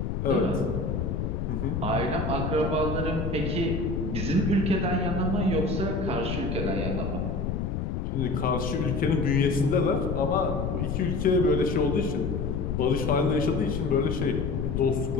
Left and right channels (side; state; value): left; noise; rumble, 1 dB below the sound